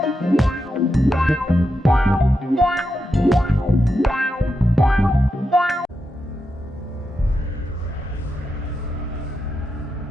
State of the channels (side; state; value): both; normal; correlation 0.86